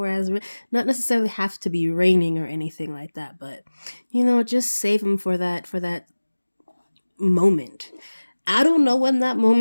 not necessarily have to be raining or anything like that, but just save them for that moment. I don't know when that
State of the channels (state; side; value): inverted; both; correlation -1.00